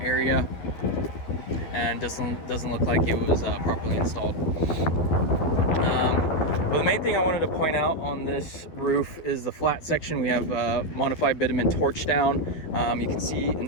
and doesn't look like it was properly installed. But the main thing I wanted to point out on this roof is the flat section. We have modified bitumen torch down. You can see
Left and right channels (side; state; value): right; late; 12 ms